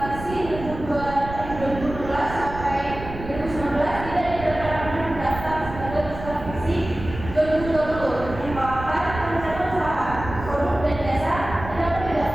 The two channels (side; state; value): right; noise; rumble, 11 dB below the sound